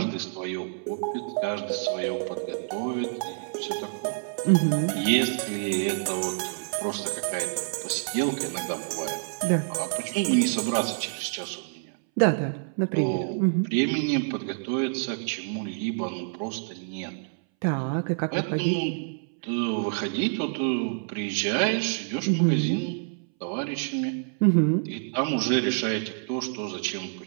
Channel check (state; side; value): silent; left; 60 dB below the other